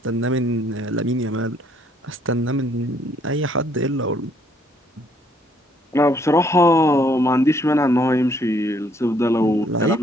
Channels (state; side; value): normal; both; correlation 0.67